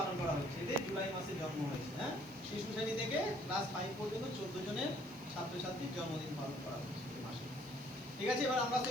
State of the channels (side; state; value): right; noise; hiss, 23 dB below the sound